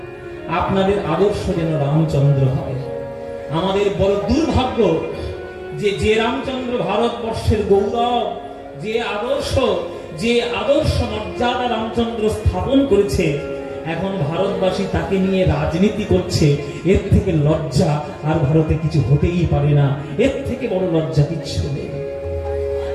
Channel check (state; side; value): identical; both; correlation 1.00